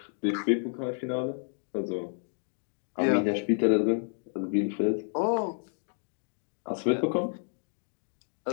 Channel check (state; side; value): silent; right; 58 dB below the other